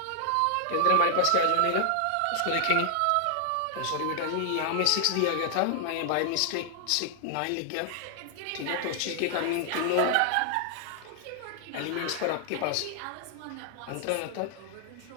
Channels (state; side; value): different; both; correlation 0.00